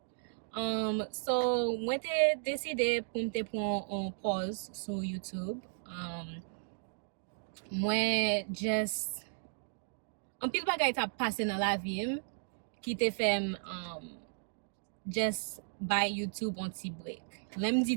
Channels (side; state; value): left; silent; digital silence